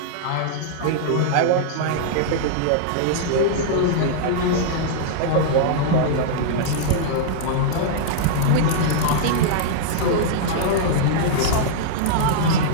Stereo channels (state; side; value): different; both; correlation -0.02